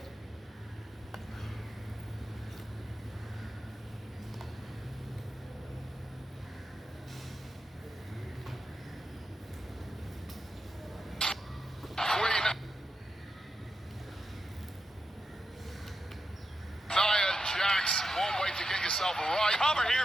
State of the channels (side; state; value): both; normal; correlation 0.88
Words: One way to get yourself right. Cover here